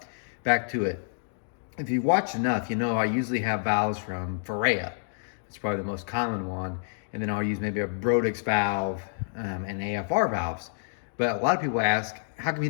back to it. If you've watched enough, you know I usually have valves from Ferrea. It's probably the most common one. And then I'll use maybe a Brodix valve and AFR valves. But a lot of people ask, how come you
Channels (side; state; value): right; silent; digital silence